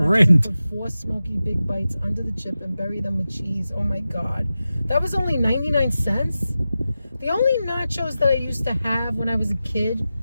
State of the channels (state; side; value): inverted; both; correlation -0.93